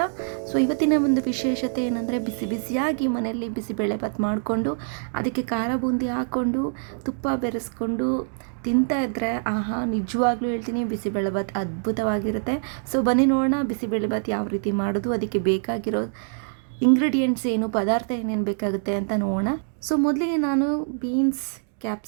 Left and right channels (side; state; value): left; silent; digital silence